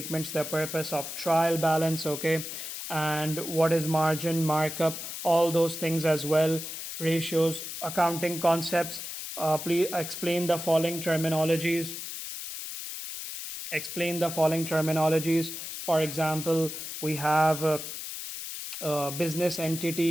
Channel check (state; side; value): noise; left; hiss, 8 dB below the sound